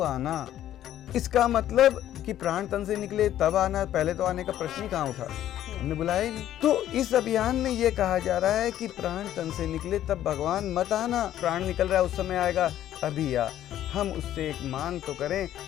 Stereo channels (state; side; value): quieter; right; 12.1 dB